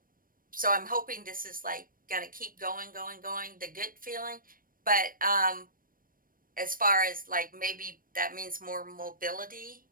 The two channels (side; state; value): left; late; 0.41 ms